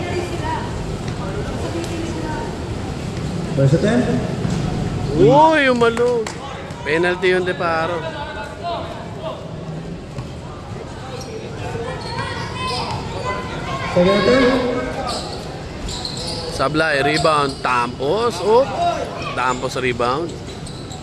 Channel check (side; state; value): both; identical; correlation 1.00